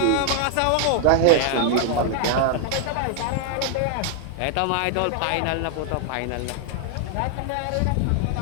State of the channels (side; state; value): both; different; correlation 0.00